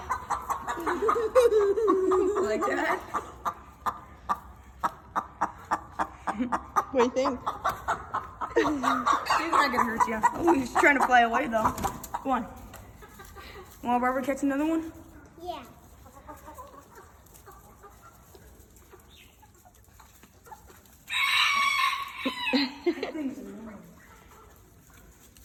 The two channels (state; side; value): identical; both; correlation 1.00